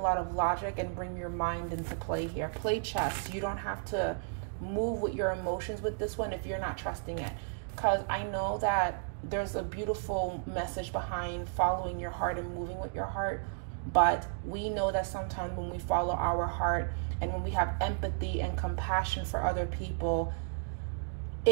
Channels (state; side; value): silent; left; digital silence